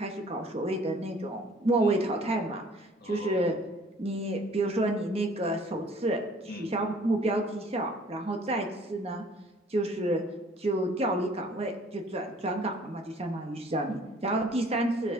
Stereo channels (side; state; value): both; normal; correlation 0.54